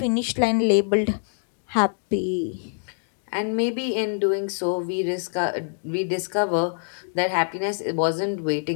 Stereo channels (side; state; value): right; silent; digital silence